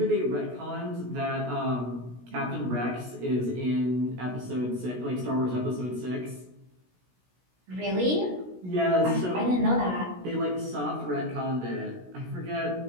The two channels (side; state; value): left; late; 16 ms